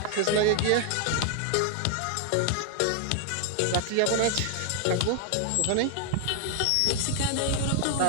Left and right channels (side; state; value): both; different; correlation 0.00